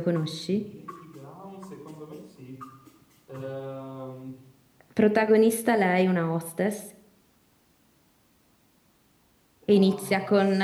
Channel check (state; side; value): identical; both; correlation 1.00